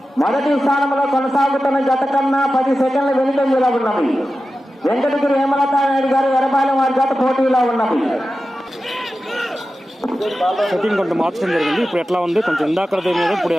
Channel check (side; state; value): both; normal; correlation 0.93